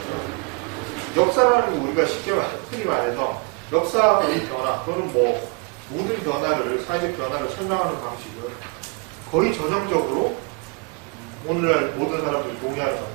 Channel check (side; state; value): left; quieter; 31.9 dB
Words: 역사라는 거 우리가 쉽게 흔히 말해서 역사의 변화 또는 뭐 모든 변화를, 사회적 변화를 설명하는 방식은 거의 전형적으로 오늘날 모든 사람들이 동의하는